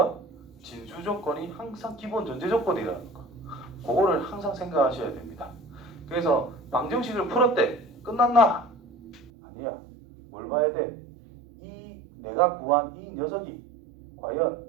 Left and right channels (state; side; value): drops out; left; at 9.3 s